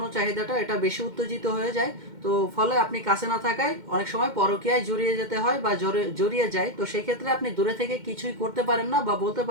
চাহিদাটা এটা বেশি উত্তেজিত হয়ে যায়, তো ফলে আপনি কাছে না থাকায় অনেক সময় পরকীয়ায় জড়িয়ে যেতে হয় বা জড়িয়ে যায়। তো সেই ক্ষেত্রে আপনি দূরে থেকে কিছুই করতে পারেন না বা বলতে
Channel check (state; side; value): late; left; 2.1 ms